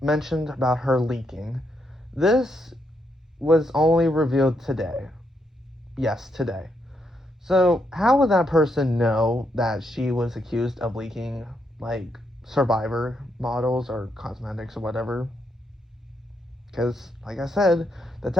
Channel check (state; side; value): normal; both; correlation 0.78